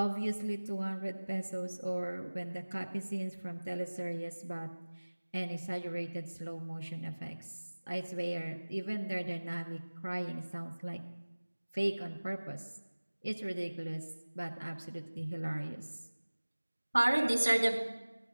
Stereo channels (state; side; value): inverted; both; correlation -1.00